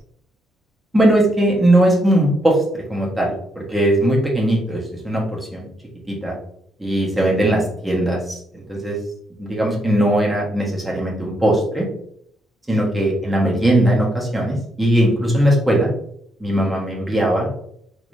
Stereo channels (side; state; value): both; normal; correlation 0.78